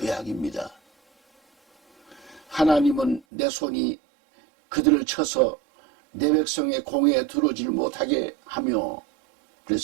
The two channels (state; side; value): drops out; left; at 3.2 s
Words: 하나님은 내 손이 그들을 쳐서 내 백성의 공회에 들어오질 못하게 하며